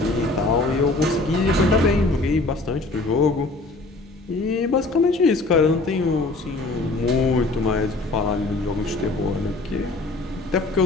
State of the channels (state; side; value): quieter; right; 3.1 dB